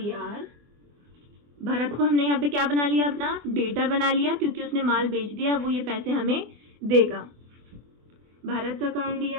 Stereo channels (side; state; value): left; late; 24 ms